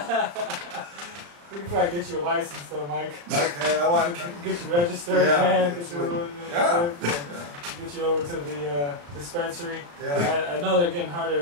We can probably get you a license though, Mike. Okay, I want to get you registered, yeah, man. Get you, yeah. Get you over to the dispensary. Yeah. I know they're getting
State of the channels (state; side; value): late; left; 35 ms